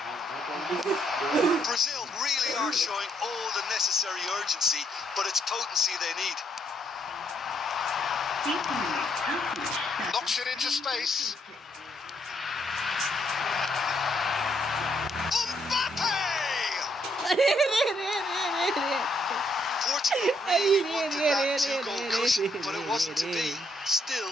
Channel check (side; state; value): both; normal; correlation 0.73